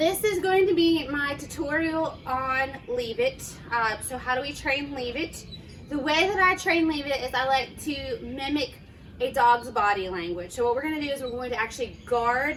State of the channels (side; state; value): both; identical; correlation 1.00